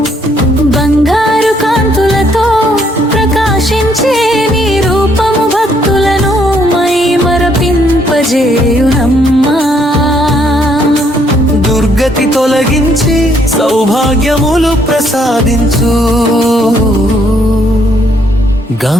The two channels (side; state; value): both; normal; correlation 0.69